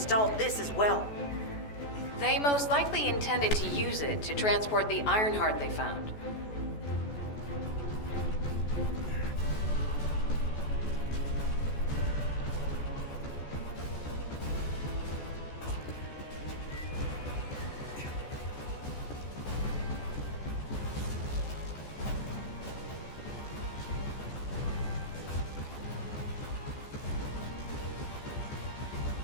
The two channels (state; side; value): late; right; 14 ms